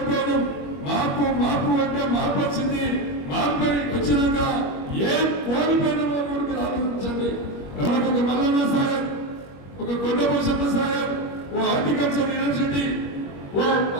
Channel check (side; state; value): right; late; 21 ms